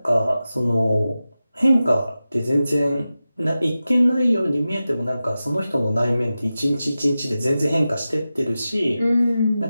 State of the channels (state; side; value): inverted; both; correlation -0.94